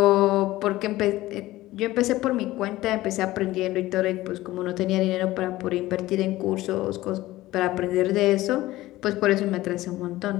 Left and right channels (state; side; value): quieter; right; 17.0 dB